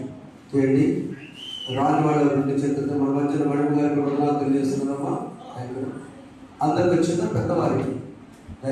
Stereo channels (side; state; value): both; identical; correlation 1.00